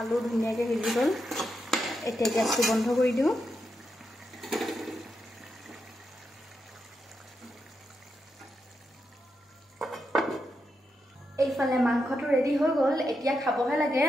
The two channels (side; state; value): both; normal; correlation 0.85